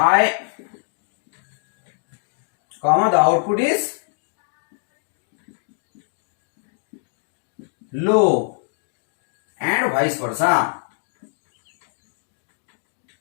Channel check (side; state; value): right; silent; 63 dB below the other